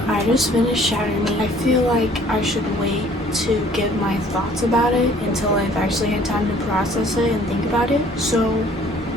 I just finished Shatter Me. I feel like I should wait to give my thoughts about it until I've actually had time to process it and think about it. So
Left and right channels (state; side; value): normal; both; correlation 0.56